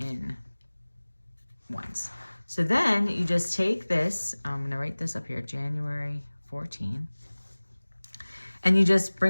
1s. So then you just take this, I'm gonna write this up here, January 14, and you just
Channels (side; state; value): both; inverted; correlation -1.00